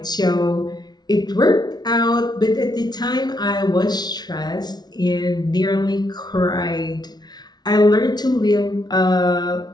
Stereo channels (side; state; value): right; late; 0.19 ms